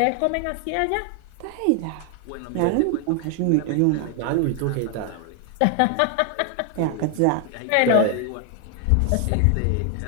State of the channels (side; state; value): both; different; correlation 0.00